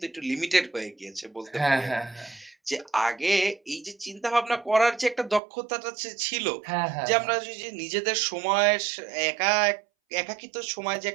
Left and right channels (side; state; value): left; drops out; at 5.4 s